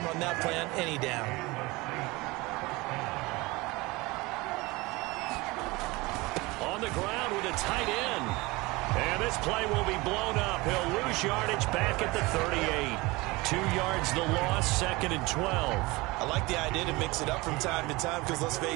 run that play on any down. On the ground with a tight end. And this play will be blown up. He'll lose yardage back at the 38. 2 yards the loss, 2nd and 12. I like the idea to mix it up from time to time because, let's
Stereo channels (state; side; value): quieter; left; 22.8 dB